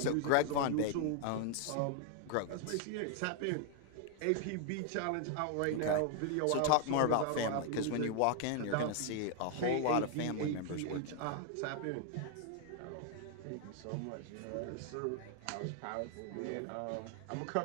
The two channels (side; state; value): both; different; correlation 0.00